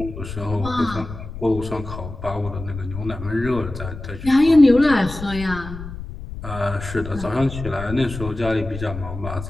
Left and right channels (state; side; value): noise; left; rumble, 10 dB below the sound